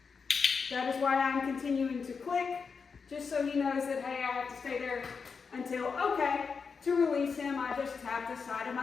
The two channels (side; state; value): right; quieter; 5.5 dB